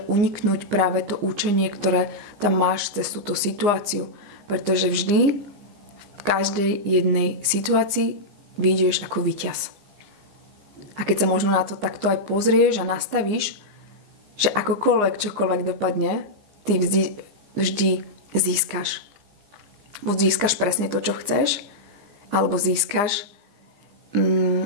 uniknúť práve to učenie, ktoré tam máš cez túto situáciu. Pretože vždy v každej jednej situácii vyjdeš ako víťaz. A keď sa možno na to takto aj pozrieš a nastavíš, že čokoľvek dopadne, ty vždy získaš. Buď získaš presne to, čo chceš, alebo získaš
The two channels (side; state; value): left; late; 15 ms